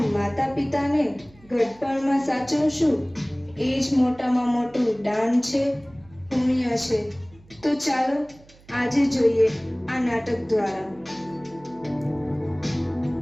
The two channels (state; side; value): noise; right; hum, 26 dB below the sound